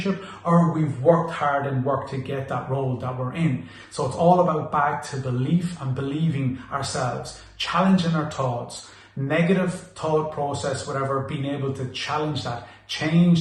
or we've worked hard and worked to get that role that we're in. So it's all about back to belief and believing ourselves, challenging our thoughts, negative thought process, whatever, being able to challenge that,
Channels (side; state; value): both; identical; correlation 1.00